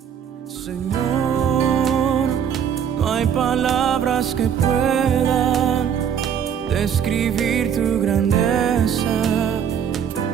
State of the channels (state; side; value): quieter; left; 8.3 dB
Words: Señor, no hay palabras que puedan describir tu grandeza